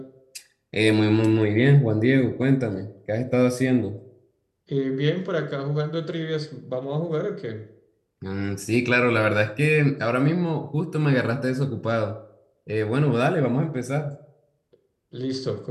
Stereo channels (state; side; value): identical; both; correlation 1.00